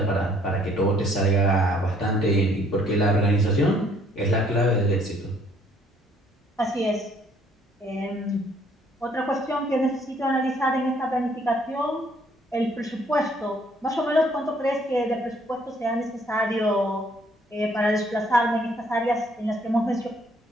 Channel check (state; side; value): normal; both; correlation 0.64